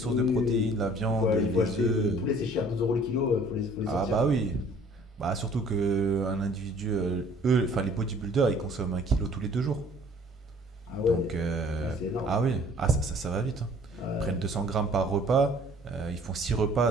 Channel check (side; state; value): both; normal; correlation 0.54